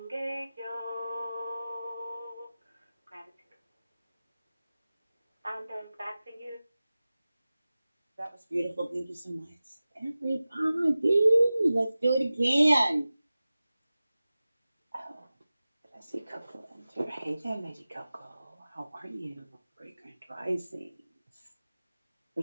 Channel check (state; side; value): inverted; both; correlation -0.96